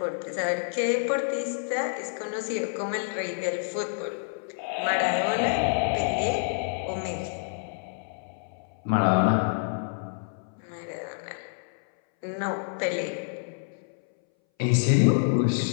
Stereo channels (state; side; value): silent; right; 59 dB below the other